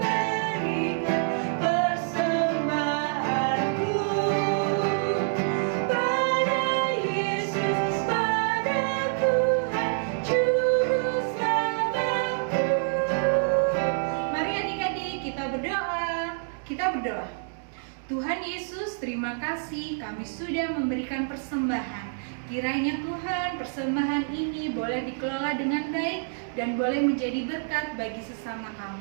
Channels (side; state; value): left; silent; digital silence